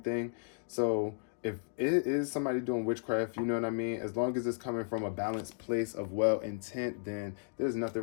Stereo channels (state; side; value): silent; right; digital silence